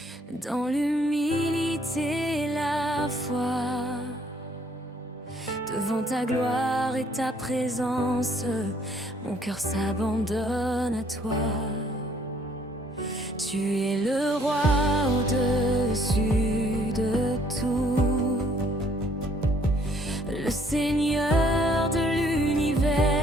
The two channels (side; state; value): both; normal; correlation 0.63